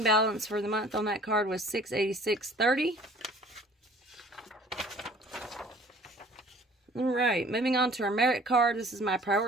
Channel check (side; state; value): both; normal; correlation 0.51